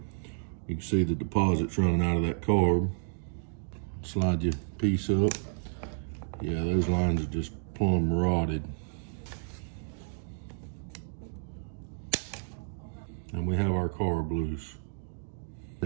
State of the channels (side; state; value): left; silent; digital silence